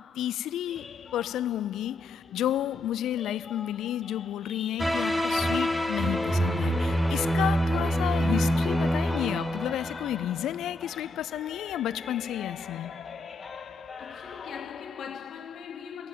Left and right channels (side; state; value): right; quieter; 3.2 dB